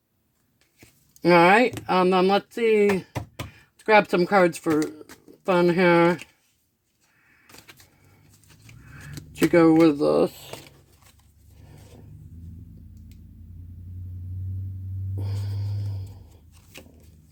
Alright, let's see. Let's grab some cards for fun here. To go with this.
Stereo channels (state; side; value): identical; both; correlation 1.00